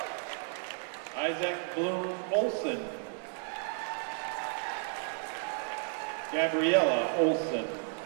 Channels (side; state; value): left; silent; 56 dB below the other